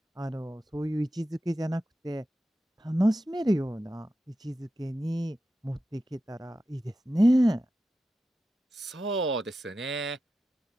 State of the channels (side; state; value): both; normal; correlation 0.91